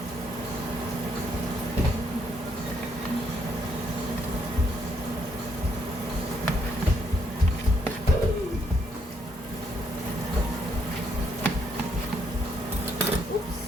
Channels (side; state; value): both; normal; correlation 0.73